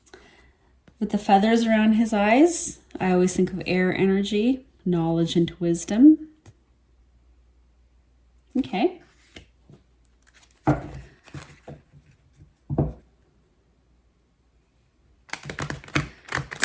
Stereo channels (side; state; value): both; identical; correlation 1.00